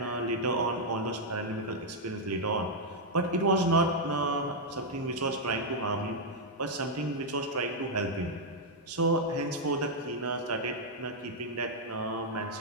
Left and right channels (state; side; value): normal; both; correlation -0.04